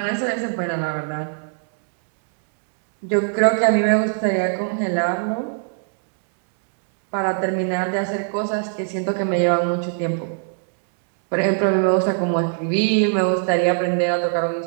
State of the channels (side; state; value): left; silent; digital silence